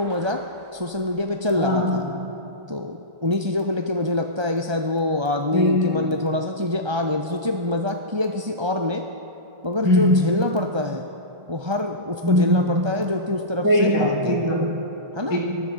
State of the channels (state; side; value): late; left; 1.3 ms